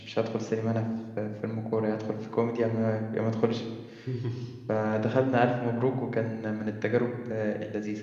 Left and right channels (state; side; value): identical; both; correlation 1.00